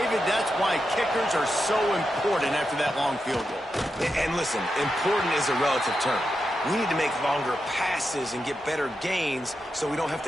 that's why kickers are so important after that long field goal. And listen, important is a relative term. We need to make longer passes and get better gains so we don't have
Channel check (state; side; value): normal; both; correlation 0.87